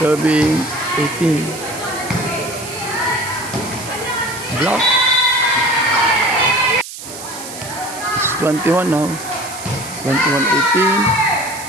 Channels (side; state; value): right; noise; hiss, 12 dB below the sound